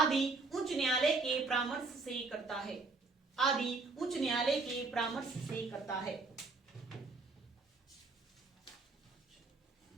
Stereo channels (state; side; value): quieter; left; 3.9 dB